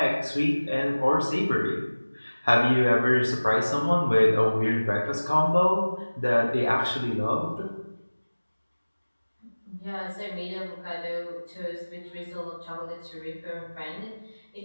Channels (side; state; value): both; inverted; correlation -1.00